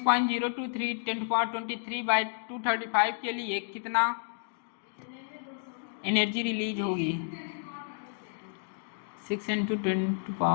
10.23 बाई 235 के लिए कितना एनर्जी रिलीज होगी 6 इंटू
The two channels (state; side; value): silent; right; digital silence